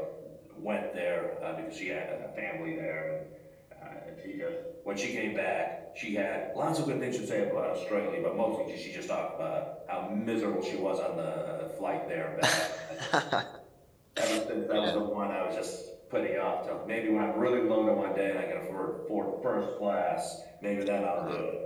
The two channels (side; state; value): both; identical; correlation 1.00